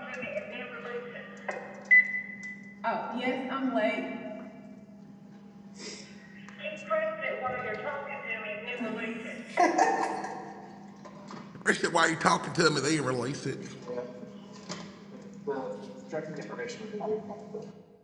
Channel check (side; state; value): both; identical; correlation 1.00